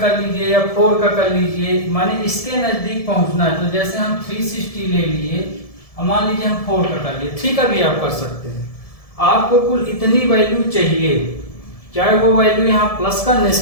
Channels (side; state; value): right; late; 1.7 ms